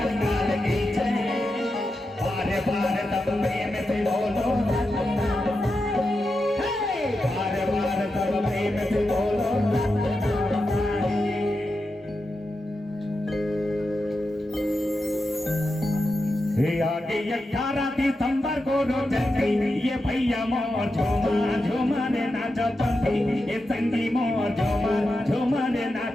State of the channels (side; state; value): both; normal; correlation 0.89